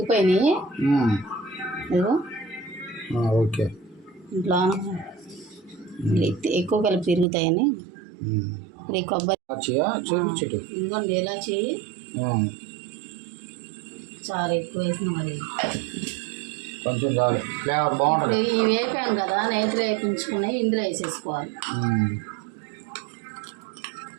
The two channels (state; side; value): drops out; left; at 7.2 s